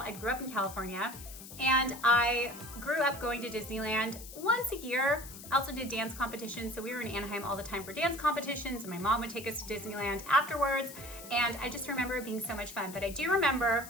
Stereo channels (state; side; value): noise; left; hiss, 14 dB below the sound